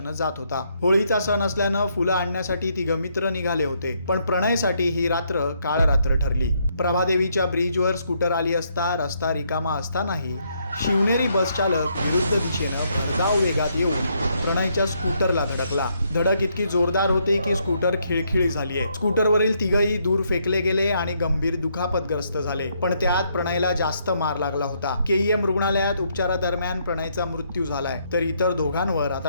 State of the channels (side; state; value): both; inverted; correlation -0.73